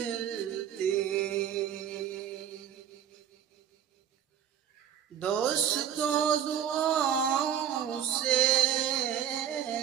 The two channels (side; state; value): left; quieter; 9.4 dB